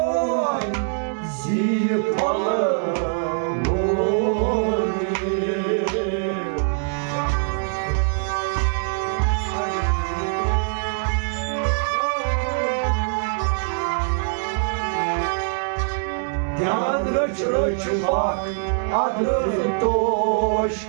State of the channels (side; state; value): left; silent; digital silence